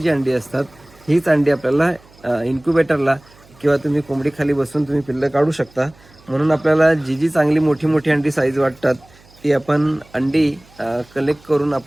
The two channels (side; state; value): right; noise; hum, 28 dB below the sound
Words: अंडी असतात, हीच अंडी आपल्याला इन्क्युबेटरला किंवा तुम्ही कोंबडीखाली बसून तुम्ही पिल्लं काढू शकता. म्हणून आपल्याला जी चांगली मोठी अंडी साईज वाटतात, ती आपण अंडी कलेक्ट करून